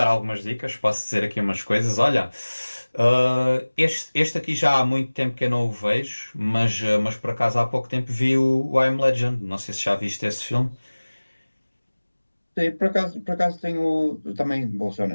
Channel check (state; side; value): inverted; both; correlation -1.00